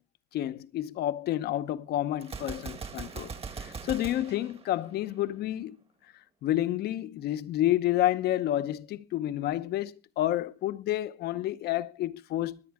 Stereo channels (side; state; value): right; quieter; 12.1 dB